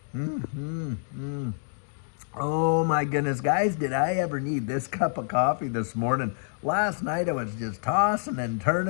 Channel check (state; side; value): silent; right; digital silence